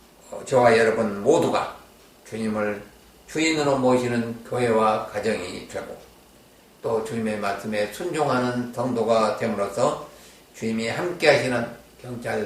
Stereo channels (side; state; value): both; identical; correlation 1.00